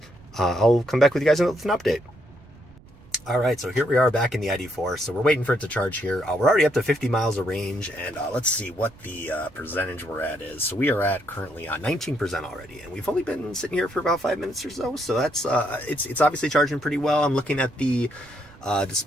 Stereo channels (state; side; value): noise; right; rumble, 24 dB below the sound